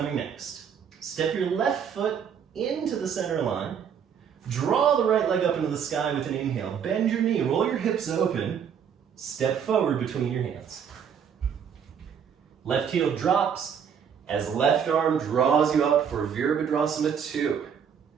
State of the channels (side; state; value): left; quieter; 7.6 dB